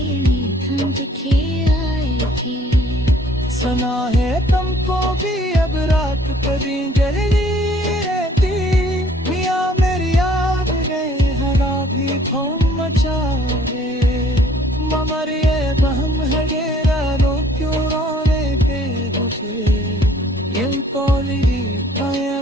ठंड के आए थे। सुना है तुमको भी अब रात कभी जल्दी रहती, मियाँ मेरी याद गए हरा भी खौम मचाए। ममर ये बहम है गेरा रो क्यों रोने पे उठे, ये कौली काया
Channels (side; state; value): both; normal; correlation 0.58